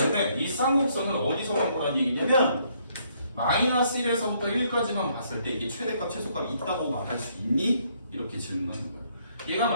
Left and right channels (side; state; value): both; inverted; correlation -0.69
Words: 이 쌍곡선을 어디서만 보라는 얘기냐면 마이너스 1에서부터 1까지만 봤을 때 이게 최대값 최소값이 있다고 말할 수 있니? 이렇게 질문하는 거예요. 얘가